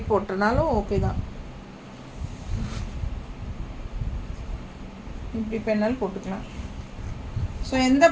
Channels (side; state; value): both; identical; correlation 1.00